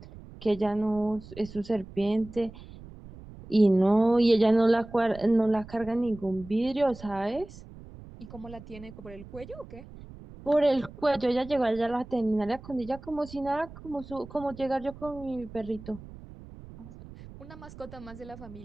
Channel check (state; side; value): noise; right; rumble, 17 dB below the sound